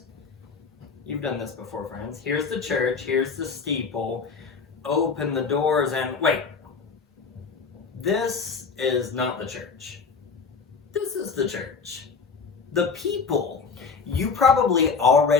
You've done this before, friends. Here's the church, here's the steeple. Open the doors and wait. This is not the church. This is the church. The people. You probably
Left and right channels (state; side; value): quieter; right; 5.1 dB